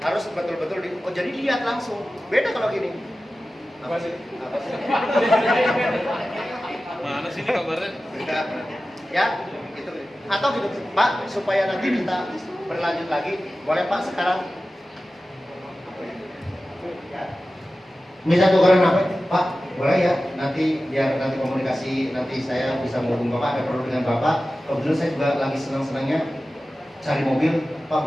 harus betul-betul jadi lihat langsung. Beda kalau gini. Apa sih? Mana sih ini kabarnya? Ya, gitu. Atau gitu, Pak, supaya nanti kita berlanjut lagi, boleh Pak sekarang? Ya. Bisa tukeran apa? Pak, boleh ya? Biar nanti komunikasi, nanti saya bisa menghubungi Bapak, ada perlu dengan Bapak. Kebetulan saya juga lagi senang-senangnya cari mobil. Pak,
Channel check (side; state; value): both; normal; correlation 0.95